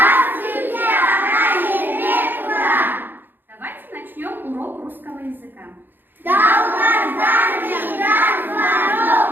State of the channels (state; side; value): late; left; 0.094 ms